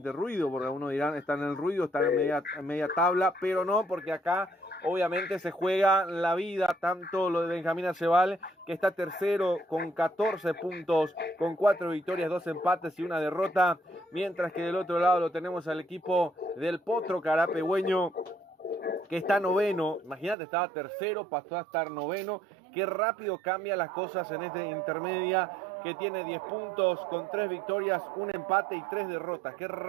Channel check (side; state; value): left; drops out; at 20.4 s